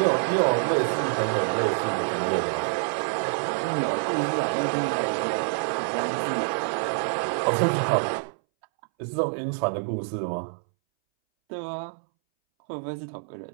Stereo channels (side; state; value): left; silent; 61 dB below the other